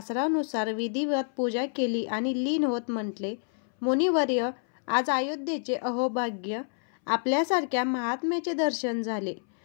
विधिवत पूजा केली आणि लीन होत म्हटले, मुनिवर्य, आज अयोध्येचे अहोभाग्य. आपल्यासारख्या महात्म्याचे दर्शन झाले.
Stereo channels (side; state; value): right; silent; 59 dB below the other